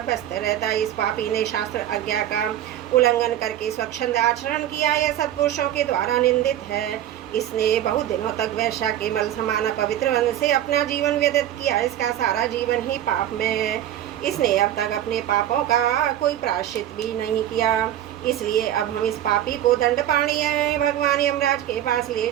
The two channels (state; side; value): quieter; left; 11.9 dB